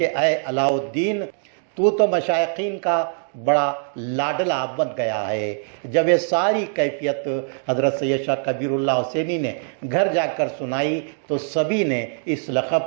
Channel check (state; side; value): silent; left; 63 dB below the other